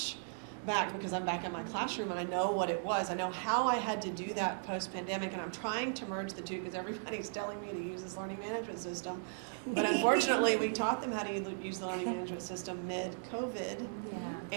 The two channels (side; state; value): left; silent; digital silence